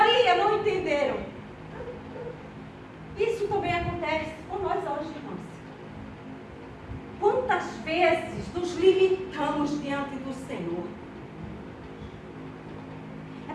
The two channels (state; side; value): identical; both; correlation 1.00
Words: não entenderam. Isso também acontece com nós hoje, irmãos. Quantas vezes nos limitamos diante do Senhor? É